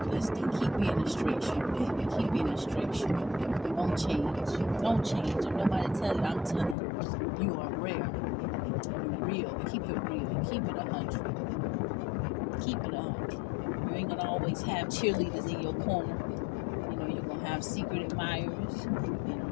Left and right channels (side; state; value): right; drops out; at 6.8 s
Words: blessed day. Keep being a straight shooter, baby. Keep being a straight shooter. Don't change. Don't change. If nobody tell you, I'm telling you. You are rare. You're real. Keep it real. Keep it 100. Keep it 100. You ain't gonna always have cheerleaders in your corner. You know, you're gonna have secret admirers. And